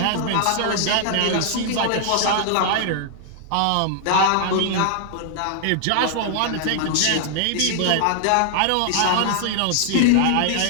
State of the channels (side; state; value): both; different; correlation 0.00